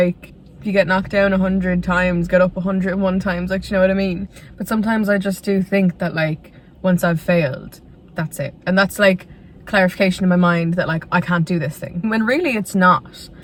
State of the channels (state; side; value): identical; both; correlation 1.00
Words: if you get knocked down 100 times, get up 101 times, like, you know what I mean? But sometimes I just do think that like, once I've failed, that's it. And that's like clarification in my mind that like, I can't do this thing. When really it's not.